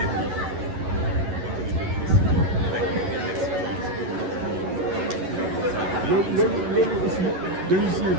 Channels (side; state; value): left; late; 11 ms